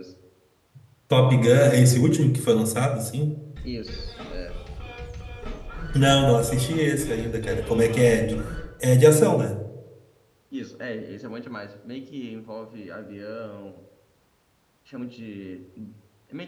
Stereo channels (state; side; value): identical; both; correlation 1.00